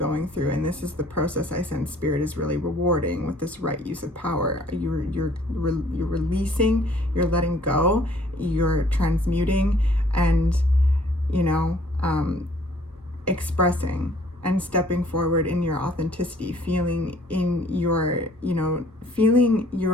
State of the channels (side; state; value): both; normal; correlation 0.58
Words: through, and this is the process I sense Spirit is really rewarding with this right use of power. You're releasing, you're letting go, you're transmuting, and, you know, expressing and stepping forward in your authenticity, feeling in your, you know, feeling